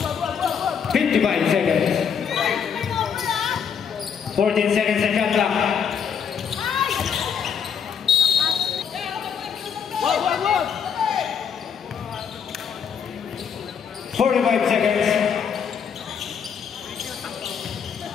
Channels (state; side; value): quieter; right; 7.2 dB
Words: 55 seconds. 14 seconds and shot clock. 45 seconds.